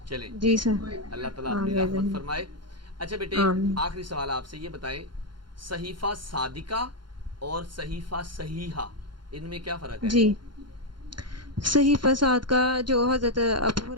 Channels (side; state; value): left; late; 0.72 ms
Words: چلیں جی سر، اللہ تعالیٰ آ اپنی گیا رحمت ذہن۔ فرمائے۔ اچھا بیٹے آمین۔ آخری سوال آپ سے یہ بتائیں، صحیفہ صادقہ اور صحیفہ صحیحہ ان میں کیا فرق ہے؟ جی، صحیح فساد کا جو حضرت ابو